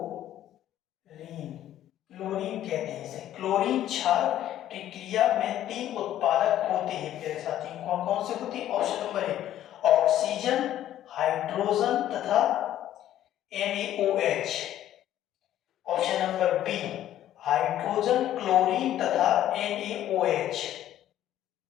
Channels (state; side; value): quieter; right; 12.2 dB